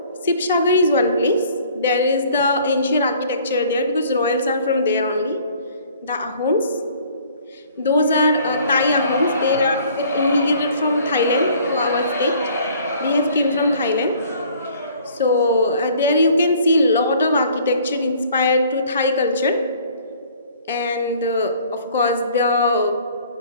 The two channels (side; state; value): both; inverted; correlation -0.55